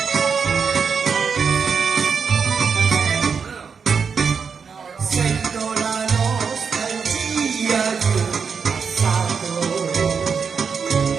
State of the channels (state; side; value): quieter; left; 6.0 dB